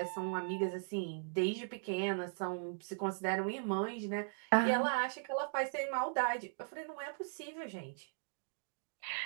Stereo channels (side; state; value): left; silent; digital silence